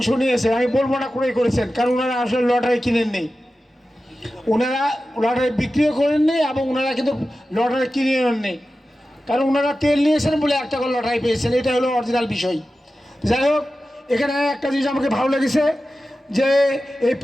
নিয়েছে, আমি বলবো না ক্রয় করেছেন, কারণ ওনারা আসলে লটারি কিনেননি, ওনারা লটারি বিক্রিও করেননি এবং ওনারা কিন্তু লটারি কিনে নেননি, কারণ ওনারা তেল নিয়েছেন বলে একটা করে লটারি পেয়েছেন, এটা হলো অরিজিনাল বিষয়। যাই হোক, এখানে একটা জিনিস আমাকে ভালো লেগেছে যে এই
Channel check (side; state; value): both; normal; correlation 0.94